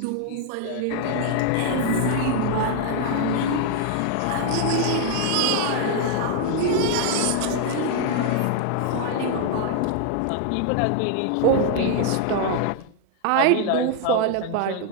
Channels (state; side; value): different; both; correlation 0.00